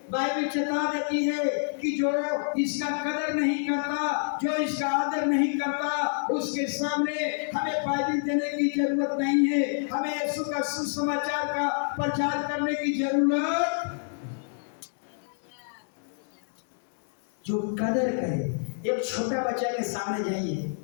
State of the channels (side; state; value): right; silent; digital silence